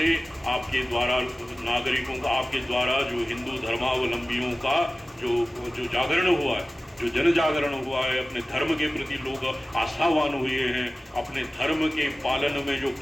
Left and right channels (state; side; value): normal; both; correlation 0.96